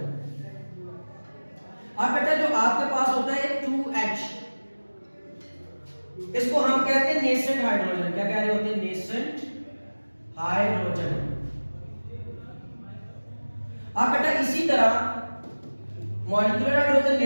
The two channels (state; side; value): inverted; both; correlation -1.00